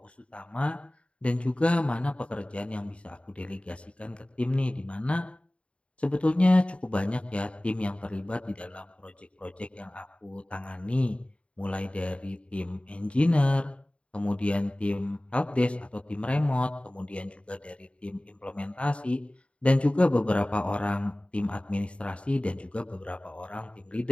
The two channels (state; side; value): late; right; 0.061 ms